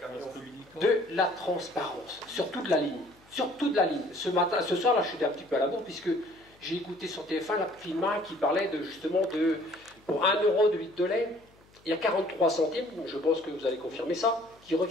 De la transparence, sur toute la ligne. Sur toute la ligne. Ce soir, là, je suis un petit peu à la bourre, puisque j'ai écouté sur TF1 la Filma qui parlait justement de, pour 1 € de litre de lait, il y a 43 centimes, je pense que vous allez confirmer ça, qui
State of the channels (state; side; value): noise; left; hum, 29 dB below the sound